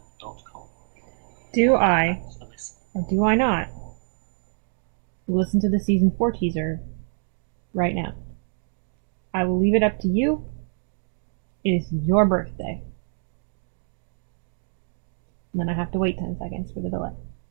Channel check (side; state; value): left; silent; 61 dB below the other